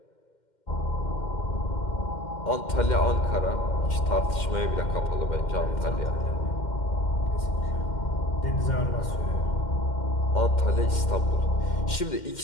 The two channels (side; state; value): right; late; 2.1 ms